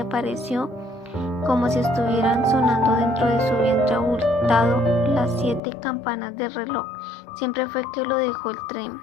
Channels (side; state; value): right; drops out; at 5.6 s